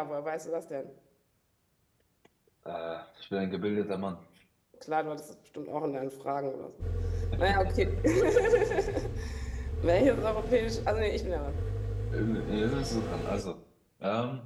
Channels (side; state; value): both; identical; correlation 1.00